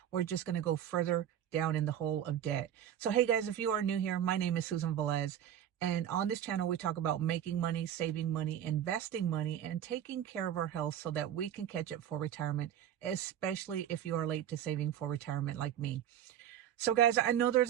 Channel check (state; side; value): quieter; left; 10.4 dB